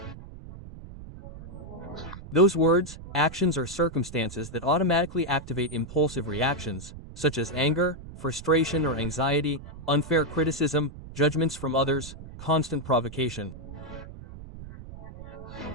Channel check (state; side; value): noise; right; rumble, 14 dB below the sound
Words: Those words, actions, or circumstances that automatically activate impulsive reactions, such as anger, frustration or anxiety, unfair criticism, judgments from others, constant provocation.